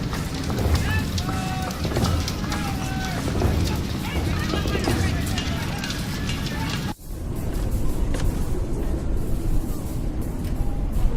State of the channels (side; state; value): both; identical; correlation 1.00